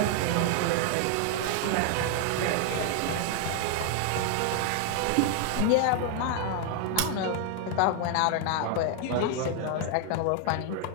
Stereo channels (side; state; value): both; different; correlation 0.00